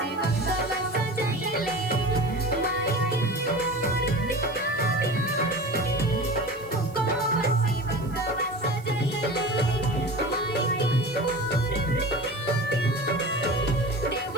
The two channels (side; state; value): right; noise; hiss, 24 dB below the sound